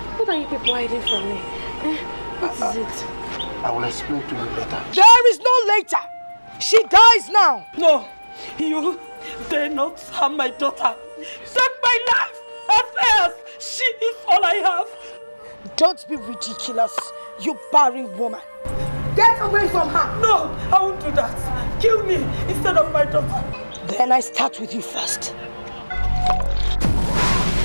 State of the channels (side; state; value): both; inverted; correlation -1.00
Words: what are you people hiding from me? What is it? I will explain to you later. There is no later. She dies now. No, you dare not harm my daughter. Take my life. As far as she is all I have. Don't be ridiculous, you barren woman. Get away from her. No, I won't do that. Kill me instead of my daughter. Then I start with you first.